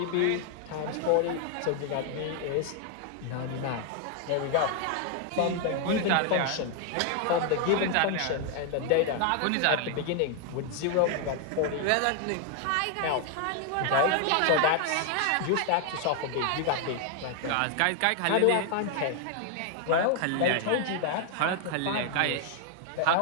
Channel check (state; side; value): different; both; correlation 0.00